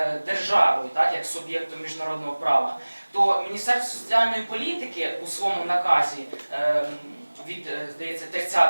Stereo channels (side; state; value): both; inverted; correlation -1.00